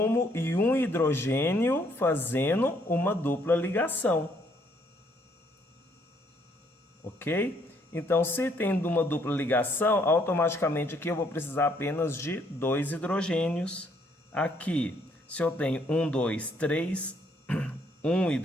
e um hidrogênio, fazendo uma dupla ligação. Ok? Então, se tem uma dupla ligação, automaticamente aqui eu vou precisar apenas de 2 hidrogênios. Aqui, se eu tenho 1, 2, 3, um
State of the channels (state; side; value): normal; both; correlation 0.68